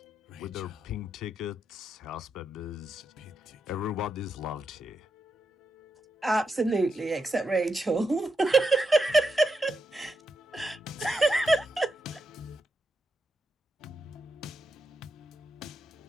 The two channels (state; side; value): normal; both; correlation 0.84